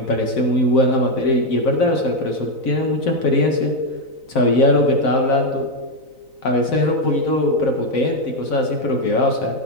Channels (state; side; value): late; right; 4.0 ms